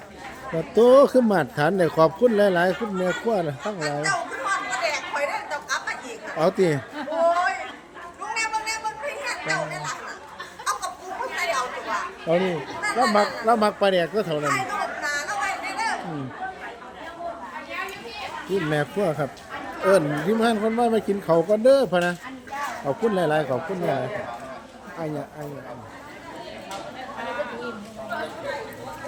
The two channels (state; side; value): identical; both; correlation 1.00